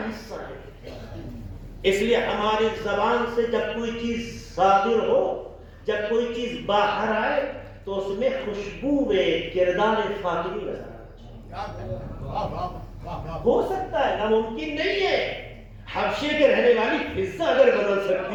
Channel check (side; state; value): both; identical; correlation 1.00